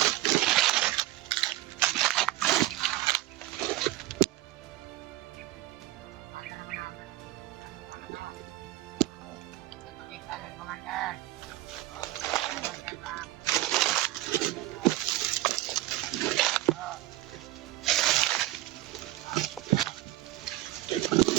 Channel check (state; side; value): quieter; left; 16.5 dB